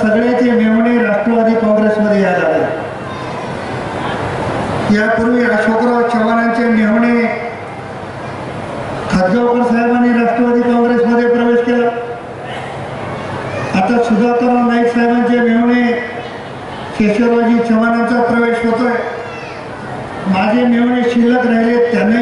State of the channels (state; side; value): identical; both; correlation 1.00